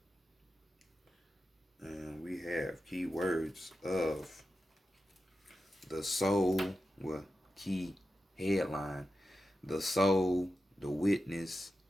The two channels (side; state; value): both; normal; correlation 0.91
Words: And we have keywords of the soul, well, key headline, the soul, the witness,